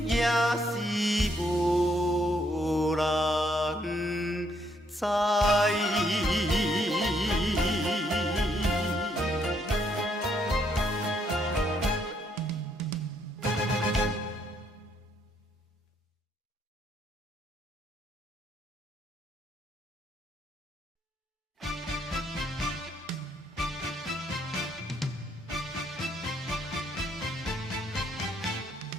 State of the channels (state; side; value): normal; both; correlation 0.72